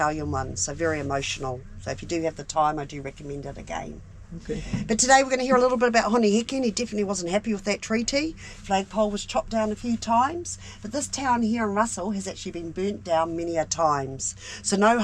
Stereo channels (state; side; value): identical; both; correlation 1.00